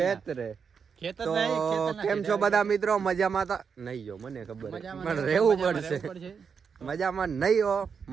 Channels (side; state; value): left; quieter; 6.3 dB